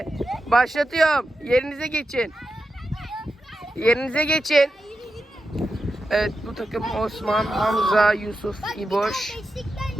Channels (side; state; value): both; normal; correlation 0.89